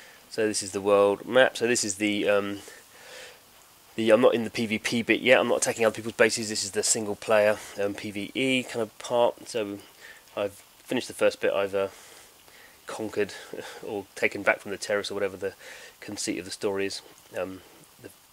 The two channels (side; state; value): both; identical; correlation 1.00